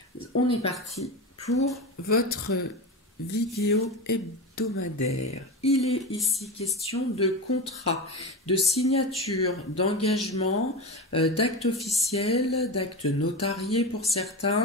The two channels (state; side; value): normal; both; correlation 0.22